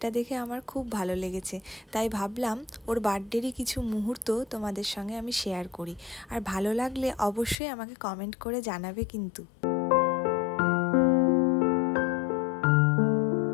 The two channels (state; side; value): drops out; right; at 7.6 s